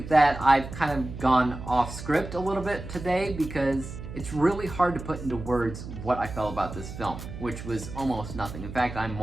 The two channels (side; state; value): right; noise; hum, 10 dB below the sound